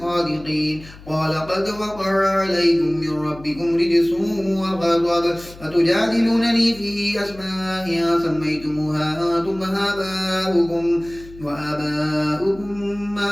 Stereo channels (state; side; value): noise; left; hum, 19 dB below the sound